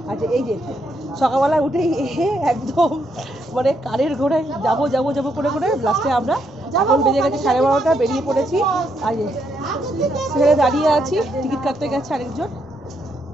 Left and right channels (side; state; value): both; normal; correlation 0.76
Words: আচ্ছা এই যে সকালবেলা উঠেই একদম মানে কারের ঘোড়ায় যাবো যাবো যাবো করে করে লাস্টে আমরা এখন বেজে গেছে 12:30, বেরিয়ে পড়েছি। আর সেখানে দাঁড়িয়ে আছি, টিকিট কাটতে গেছে আরেকজন।